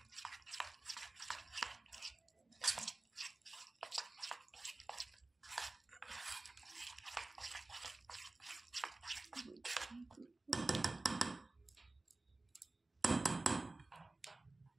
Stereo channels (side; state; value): left; quieter; 3.1 dB